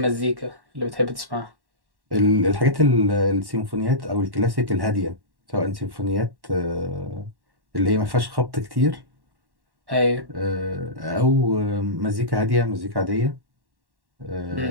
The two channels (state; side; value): late; left; 1.1 ms